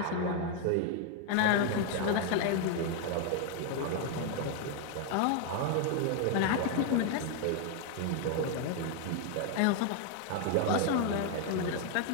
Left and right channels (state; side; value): different; both; correlation 0.01